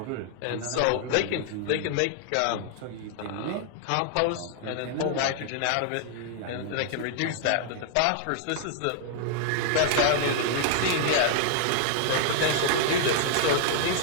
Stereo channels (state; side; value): different; both; correlation -0.01